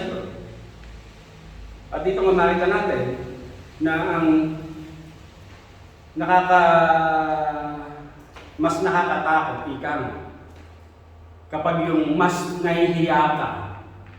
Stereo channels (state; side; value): identical; both; correlation 1.00